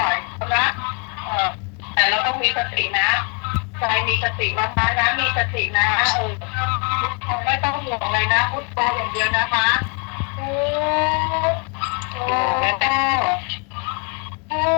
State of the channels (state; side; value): quieter; right; 36.1 dB